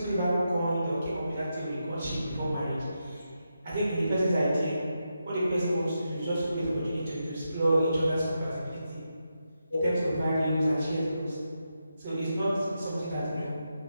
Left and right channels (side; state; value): both; inverted; correlation -0.86